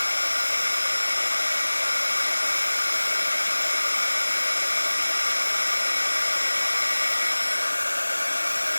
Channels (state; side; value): inverted; both; correlation -1.00